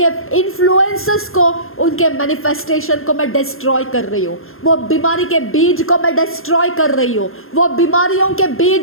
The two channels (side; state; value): right; late; 0.61 ms